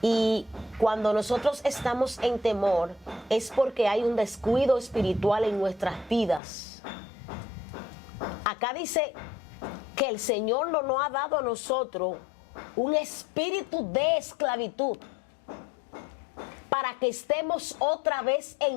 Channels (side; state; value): right; drops out; at 6.4 s